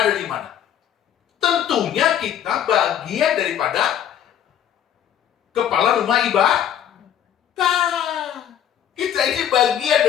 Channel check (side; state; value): right; quieter; 10.0 dB